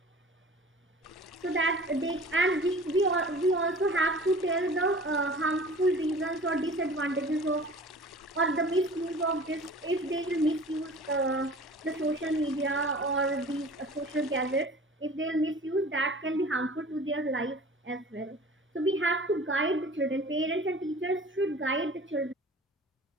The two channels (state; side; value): normal; both; correlation 0.43